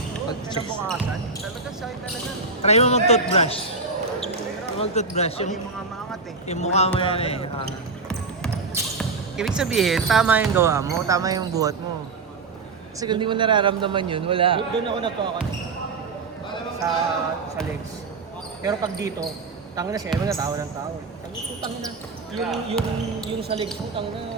Pag Kinabukasan, talaga sakit talaga. try mo mag-toothbrush. Mag-toothbrush. Yung mga maangat eh. Yung mukha mo yan eh. Ibig sabihin, tama yung gawa mo, tama yung buhat mo. Kasi kung di mo nararamdaman yun, wala. Doon ako nagkakan sa legs. Pero pag dito, tanga na siya, na tao ng tao. Tanga na. Yung sa legs mo, tanga na.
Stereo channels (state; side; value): quieter; left; 4.1 dB